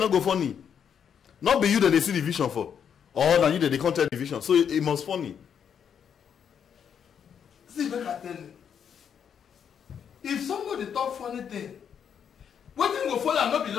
go funny? Not be you that they see the vision for. Or now you that they can't tell the vision. So it must funny. See, make I tell you. If somebody talk funny thing, what thing go follow and not be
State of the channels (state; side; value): quieter; right; 7.9 dB